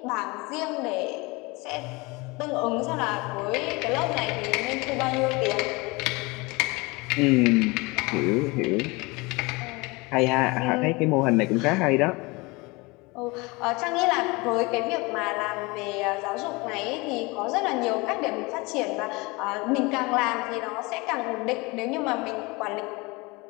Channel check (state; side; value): quieter; right; 25.1 dB